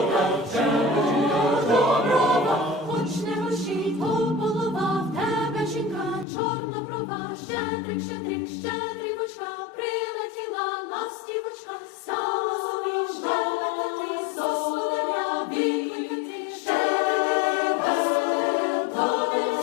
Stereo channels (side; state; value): right; drops out; at 6.2 s